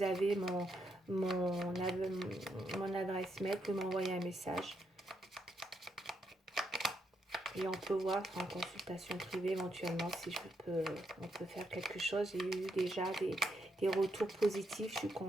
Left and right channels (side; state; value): both; normal; correlation 0.80